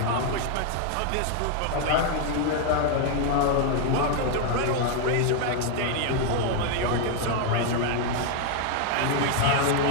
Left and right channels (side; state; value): both; different; correlation 0.00